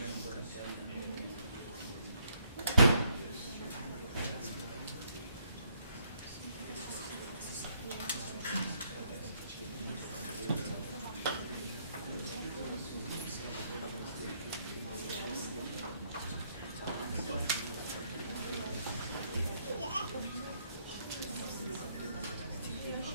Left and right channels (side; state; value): both; inverted; correlation -0.70